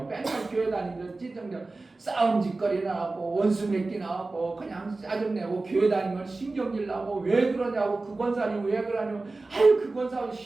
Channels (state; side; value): quieter; left; 3.4 dB